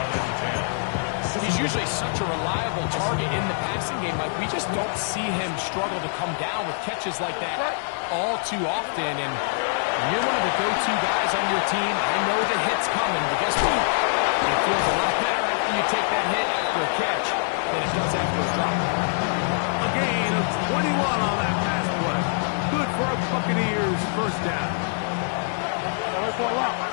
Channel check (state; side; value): silent; right; digital silence